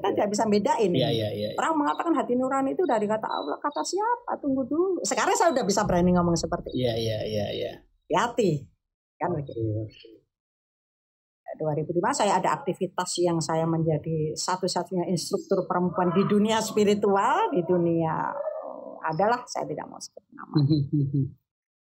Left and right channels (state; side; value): identical; both; correlation 1.00